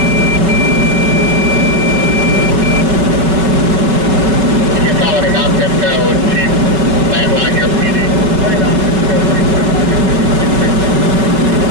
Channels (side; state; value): left; late; 5.4 ms